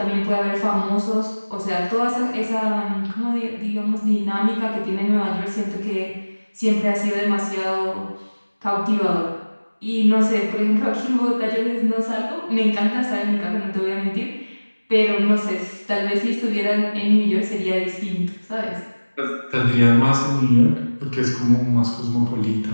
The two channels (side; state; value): both; inverted; correlation -1.00